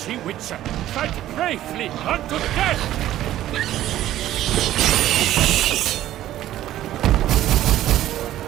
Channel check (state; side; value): quieter; left; 13.4 dB